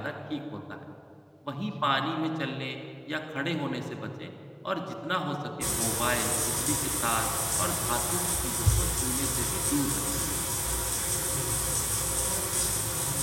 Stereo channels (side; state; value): both; identical; correlation 1.00